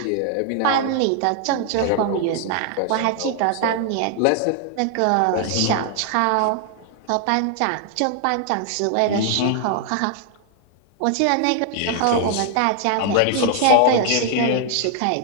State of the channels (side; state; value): both; different; correlation 0.00